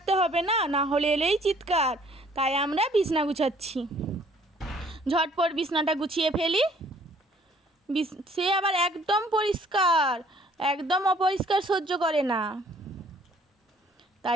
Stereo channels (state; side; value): normal; both; correlation 0.59